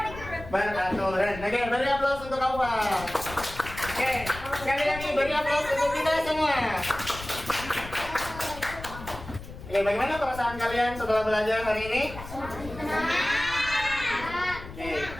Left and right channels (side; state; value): left; noise; rumble, 13 dB below the sound